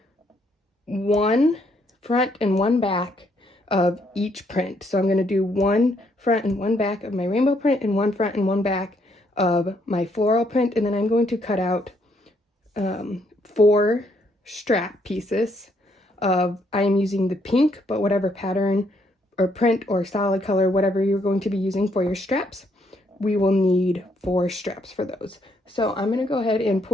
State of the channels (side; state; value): both; normal; correlation 0.71